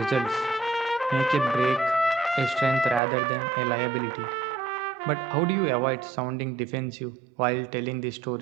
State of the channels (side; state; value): left; drops out; at 3.0 s